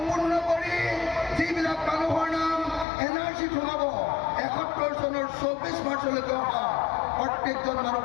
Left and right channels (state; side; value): drops out; right; at 2.9 s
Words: কৰি যিবিলাক মানুহৰ নাম NRC সোমাব 71 চনৰ 24 মাৰ্চলৈকে অহা প্ৰত্যেকজন